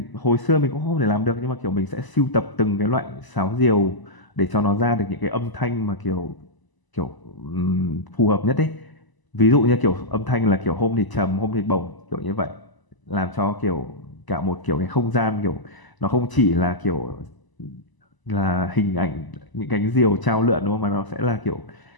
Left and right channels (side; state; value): right; late; 1.0 ms